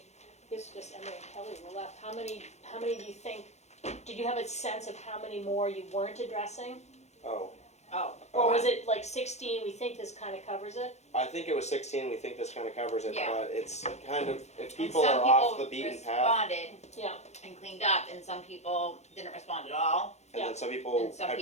this is just Emily and Kelly were left, how many do you think, did you have a sense of how many more you weren't addressing? Oh, Oh, Or was it like 16, we think this kind of covers it? I think it was 16. We think this kind of covers it, Yeah. but it's kind of if and people some are off people the beaten path, responded Yeah, and cleaned up, and some people didn't respond at all. and Yeah. then some people, And some were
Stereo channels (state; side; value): late; right; 0.32 ms